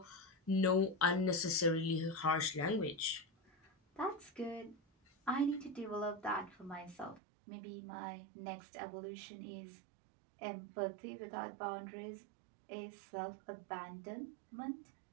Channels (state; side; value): drops out; left; at 7.2 s